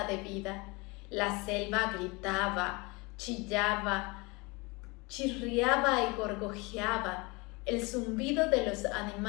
de vida. La selva gritaba, chillaba, chirriaba y gorgojeaba. El zumbido de los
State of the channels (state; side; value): quieter; right; 26.4 dB